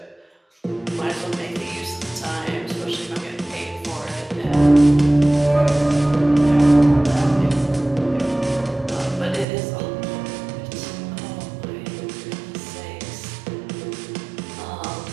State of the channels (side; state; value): left; drops out; at 9.5 s